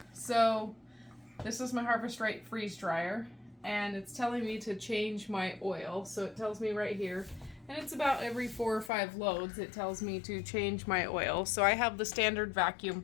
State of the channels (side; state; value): right; drops out; at 8.9 s